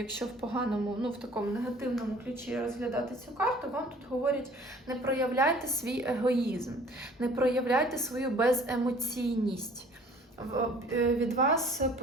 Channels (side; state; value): both; normal; correlation 0.52